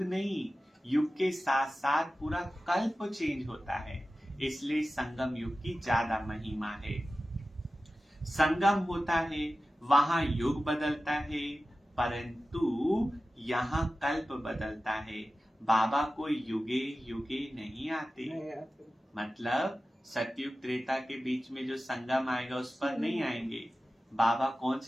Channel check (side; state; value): both; normal; correlation 0.95